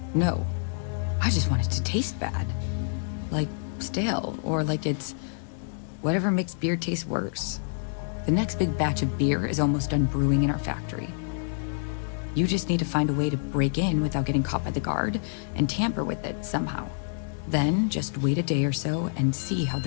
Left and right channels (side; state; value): right; silent; 60 dB below the other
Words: no. I just want it to taste bad. Like stale, or like it's whatever makes beer taste worse. The next big batch of beer is almost done brewing in our factory. You just need to find a way to break in without getting caught by the guard and tamper with it somehow. Then just wait a day or so and see how